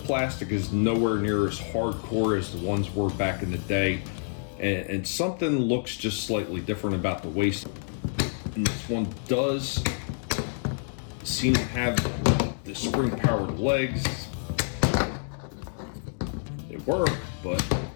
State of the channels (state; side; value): silent; right; digital silence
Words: is nowhere near as hardcore as the ones were back in the day. And something looks just slightly different about the waist. And this one does seem to have the spring-powered legs. They work, but